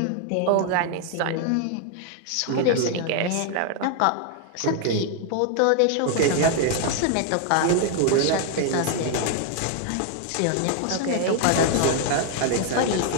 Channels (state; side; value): different; both; correlation 0.00